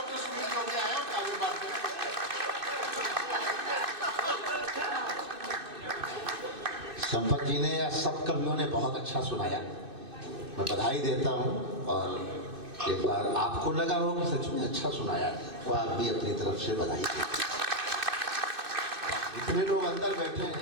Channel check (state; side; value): late; left; 2.6 ms